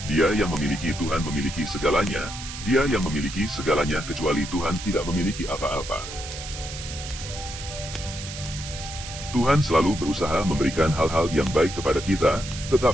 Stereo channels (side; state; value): right; noise; hiss, 10 dB below the sound